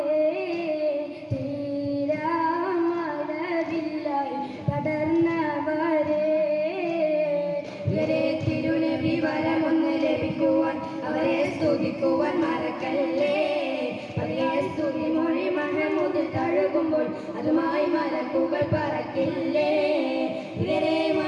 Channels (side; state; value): both; identical; correlation 1.00